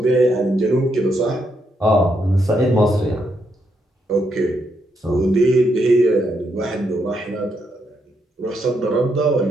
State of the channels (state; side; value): normal; both; correlation 0.78